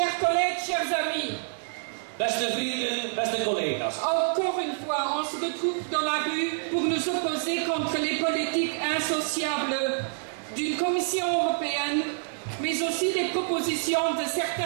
collègues, chers amis. Beste vrienden, beste collega's. Encore une fois, on se retrouve dans la rue pour nous opposer contre les politiques insociables d'une Commission européenne, mais aussi des propositions de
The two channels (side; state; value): left; silent; 60 dB below the other